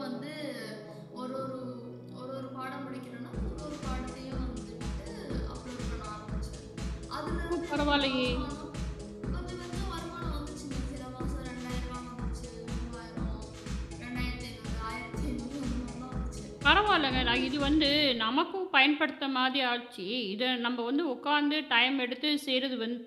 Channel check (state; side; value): identical; both; correlation 1.00